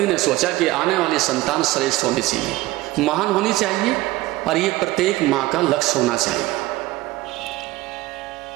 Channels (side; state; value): left; quieter; 18.6 dB